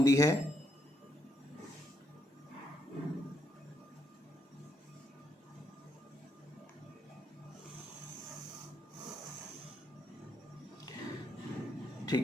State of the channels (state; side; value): normal; both; correlation 0.76